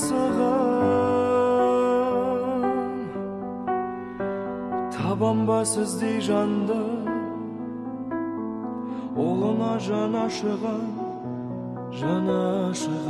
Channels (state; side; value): identical; both; correlation 1.00